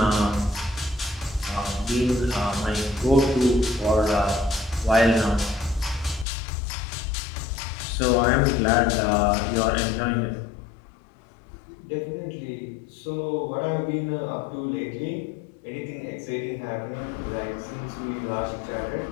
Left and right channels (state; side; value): drops out; right; at 6.2 s